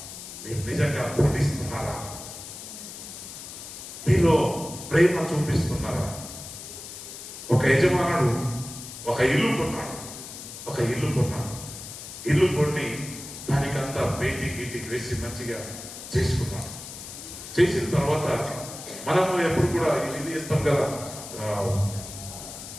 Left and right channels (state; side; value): noise; left; hiss, 11 dB below the sound